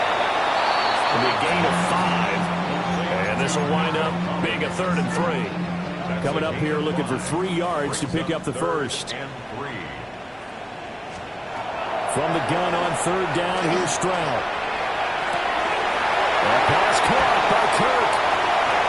And a gain of 5. And this will wind up being a 3rd and 3. Coming up here looking for 3 yards to pick up the first. From the gun on third down, here's Stroud. That pass caught by Kirk.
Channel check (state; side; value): identical; both; correlation 1.00